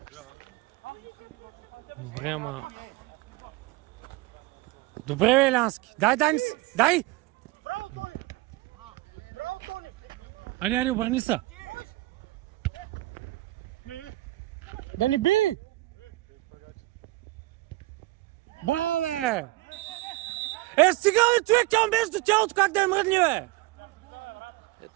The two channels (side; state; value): left; quieter; 19.6 dB